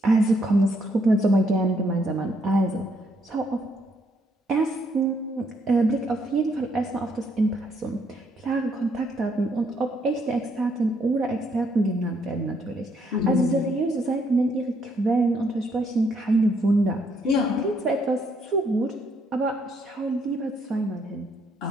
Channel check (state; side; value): normal; both; correlation 0.72